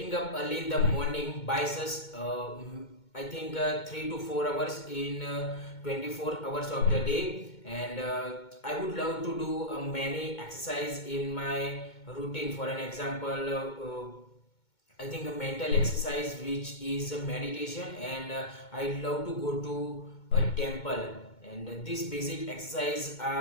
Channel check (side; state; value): right; late; 2.2 ms